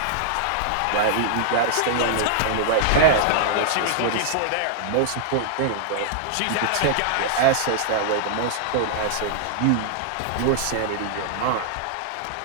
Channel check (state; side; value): different; both; correlation -0.01